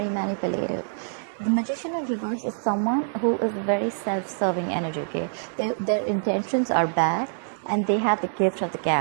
manipulative. The magician in reverse is someone who is very self-serving energy, okay? Their intentions are bad and they have the gift of the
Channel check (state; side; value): silent; left; digital silence